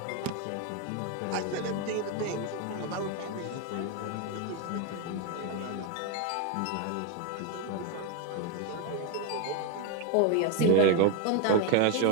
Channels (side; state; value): both; different; correlation 0.02